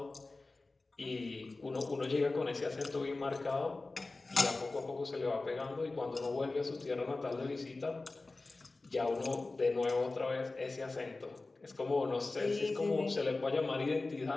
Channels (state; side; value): quieter; right; 3.3 dB